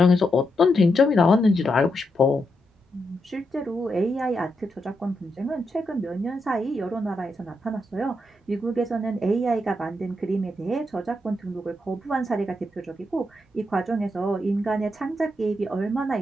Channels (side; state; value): both; normal; correlation 0.83